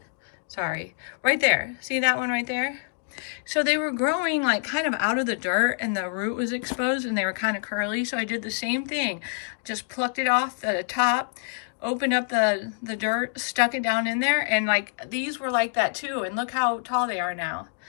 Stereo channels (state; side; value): silent; right; digital silence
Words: Sorry, right there. See that one right there? So they were growing like kind of out of the dirt, and the root was exposed, and they were kind of curly. So I did the same thing. Just plucked it off the top, opened up the dirt, stuck it down in there, and like these were like that too. And look how tall they are now.